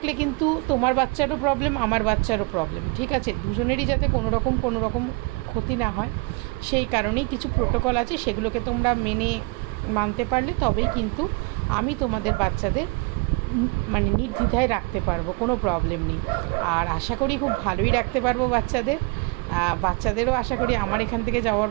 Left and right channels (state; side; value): quieter; left; 28.4 dB